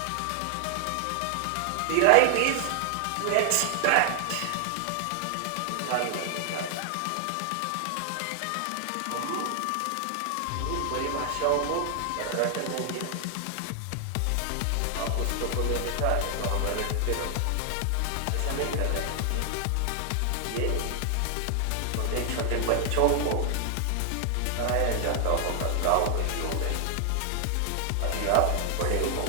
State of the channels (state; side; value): different; both; correlation 0.00